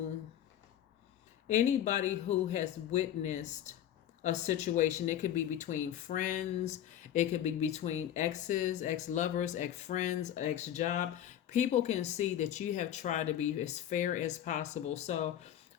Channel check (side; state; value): right; quieter; 10.9 dB